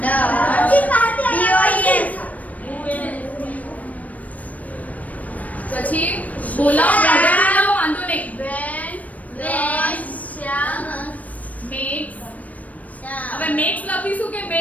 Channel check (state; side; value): late; right; 0.071 ms